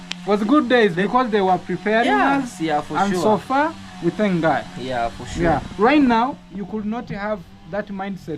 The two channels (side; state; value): both; identical; correlation 1.00